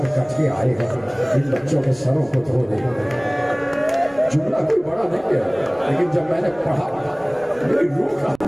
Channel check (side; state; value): right; noise; rumble, 26 dB below the sound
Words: کٹ کے آئے ہیں, ان بچوں کے سروں کو دھو دے. جملہ کوئی بڑا نہیں ہے, لیکن جب میں نے پڑھا میری روح کا